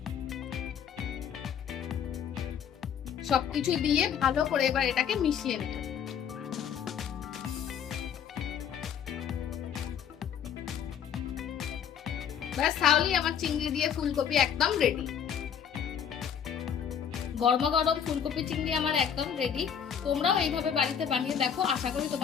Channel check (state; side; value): quieter; right; 8.2 dB